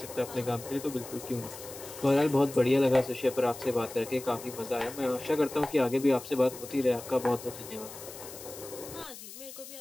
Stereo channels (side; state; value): left; noise; hiss, 14 dB below the sound